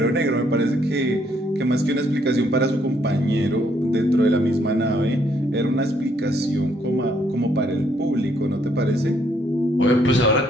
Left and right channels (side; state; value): both; normal; correlation 0.70